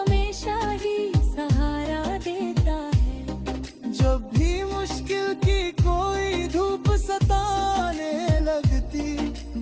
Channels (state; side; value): identical; both; correlation 1.00